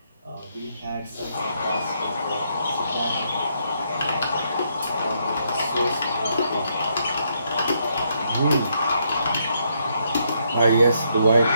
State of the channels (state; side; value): inverted; both; correlation -0.75